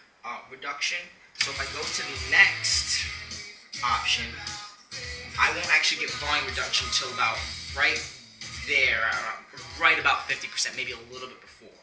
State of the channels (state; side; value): identical; both; correlation 1.00